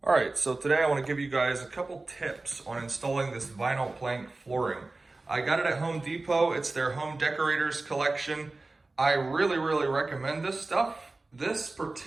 All right, so today I want to give you guys a couple tips on installing this vinyl plank flooring. I got it at Home Depot. It's their home decorators collection. I really recommend this stuff. This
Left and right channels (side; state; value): left; quieter; 3.3 dB